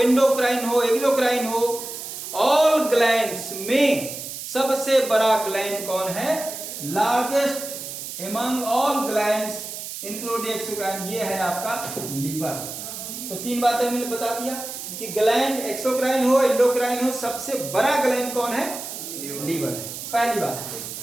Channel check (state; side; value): noise; right; hiss, 8 dB below the sound